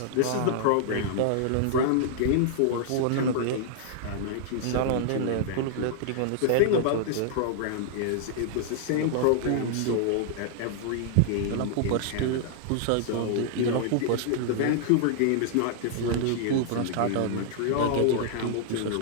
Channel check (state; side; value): different; both; correlation -0.01